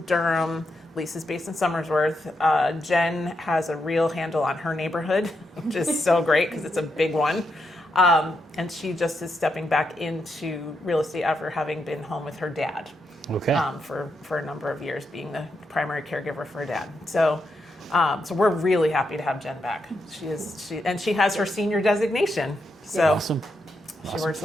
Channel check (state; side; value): normal; both; correlation 0.83